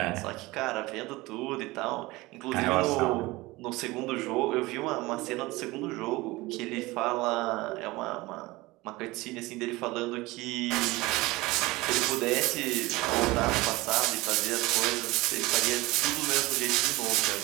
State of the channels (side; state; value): left; quieter; 21.0 dB